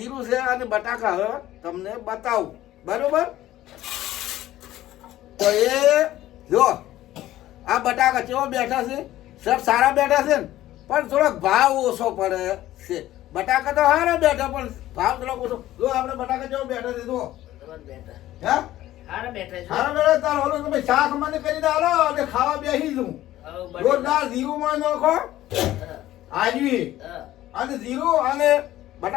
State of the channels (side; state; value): right; quieter; 14.5 dB